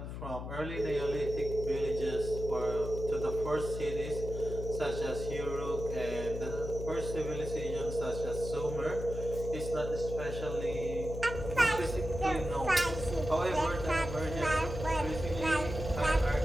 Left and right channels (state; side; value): noise; left; hum, 7 dB below the sound